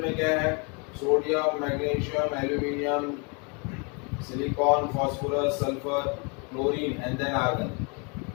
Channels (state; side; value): quieter; right; 33.3 dB